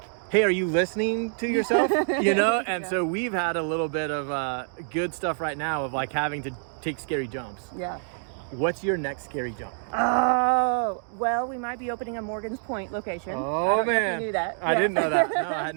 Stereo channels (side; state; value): left; silent; digital silence